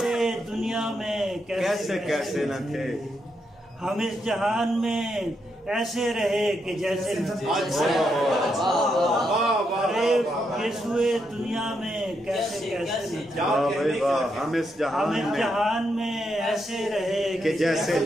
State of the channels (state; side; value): normal; both; correlation 0.81